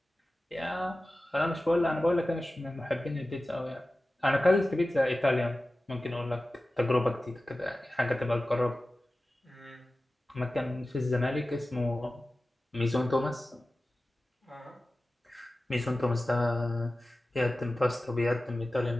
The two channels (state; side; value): normal; both; correlation 0.96